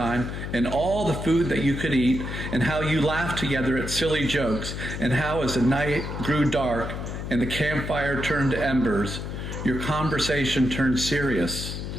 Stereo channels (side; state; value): left; noise; hum, 6 dB below the sound